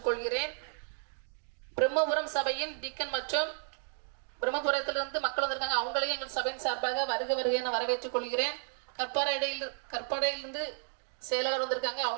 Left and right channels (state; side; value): silent; left; 56 dB below the other